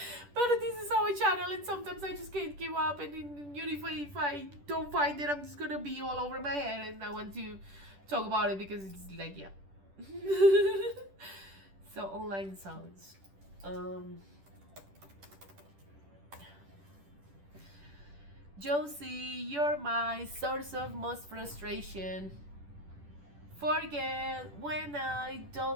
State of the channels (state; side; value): late; left; 10 ms